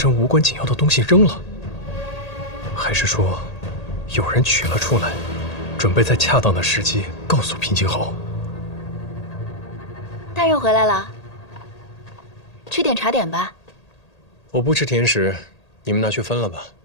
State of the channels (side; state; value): right; late; 1.8 ms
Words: 无关紧要的东西扔了？还是说，有人取了出来，准备在恰当的时机告诉平静侯？大人回来了，吃点茶点吧。我不吃甜食，你们拿去分了吧。